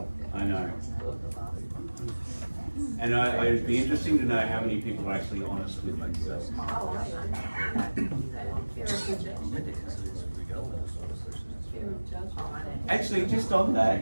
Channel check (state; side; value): inverted; both; correlation -1.00